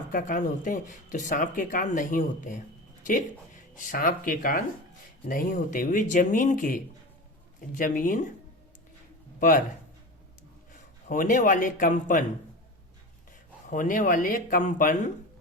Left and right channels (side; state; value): both; normal; correlation 0.28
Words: का कान होते हैं? तो सांप के कान नहीं होते हैं। ठीक, सांप के कान नहीं होते। वे जमीन पर होने वाले कंपन